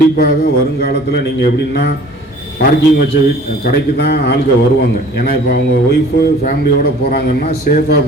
வருங்காலத்தில் நீங்கள் எப்படின்னா பார்க்கிங் வச்ச கடைக்கு தான் ஆளுங்க வருவாங்க. ஏன்னா இப்போ அவங்க ஒய்ஃபு ஃபேமிலியோடு போகிறாங்கன்னா சேஃபாக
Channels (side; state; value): both; normal; correlation 0.49